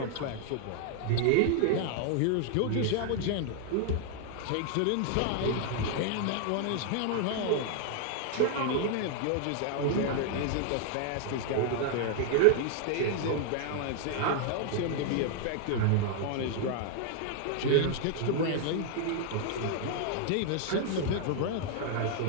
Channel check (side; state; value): both; different; correlation 0.00